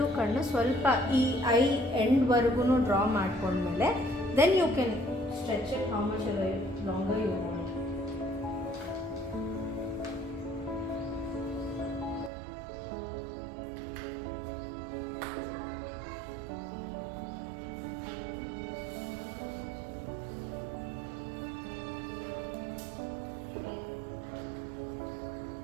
ಕಣ್ಣು ಸ್ವಲ್ಪ ಈ ಐ ಎಂಡ್ವರೆಗೂ ಡ್ರಾ ಮಾಡ್ಕೊಂಡ್ಮೇಲೆ then you can stretch it how much longer you want.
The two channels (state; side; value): drops out; left; at 12.3 s